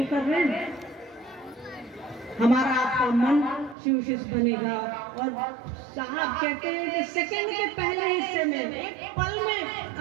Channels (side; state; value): left; drops out; at 3.8 s